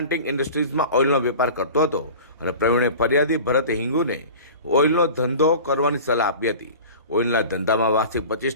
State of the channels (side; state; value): both; inverted; correlation -0.38